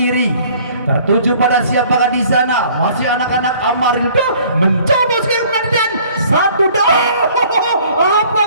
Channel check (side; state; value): both; inverted; correlation -0.55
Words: Tertuju pada siapakah di sana? Masih anak-anak Amarildo mencoba sekali dan satu